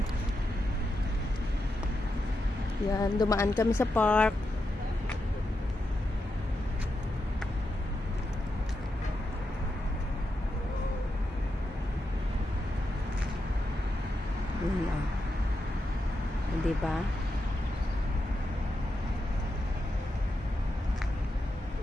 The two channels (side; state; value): both; normal; correlation 0.86